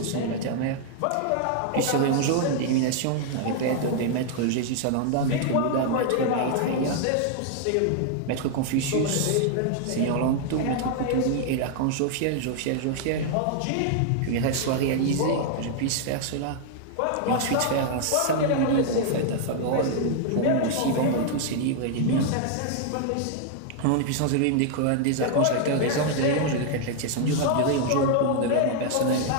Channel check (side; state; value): both; different; correlation 0.00